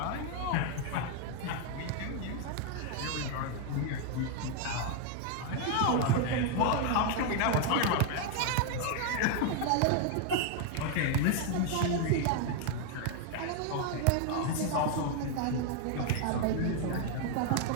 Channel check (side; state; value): both; different; correlation 0.00